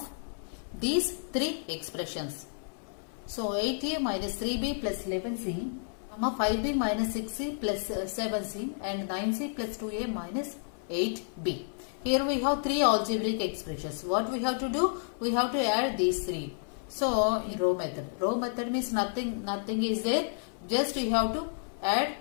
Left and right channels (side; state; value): right; silent; 57 dB below the other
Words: these three expressions. So 8a minus 3b plus 11c, 5b minus 6c plus 7c and 9c plus 2a minus 8b. Here we have three algebraic expressions. What we have to do? We have to add these three. So in row method. Row method means nothing is there. Just you have to add.